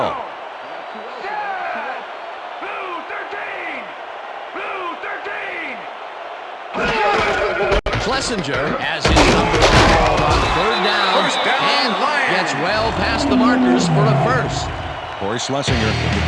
Blue 13! Blue 13! Schlesinger has his number called on third down, and gets well past the markers for a first. Corey Schlesinger took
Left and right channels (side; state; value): both; identical; correlation 1.00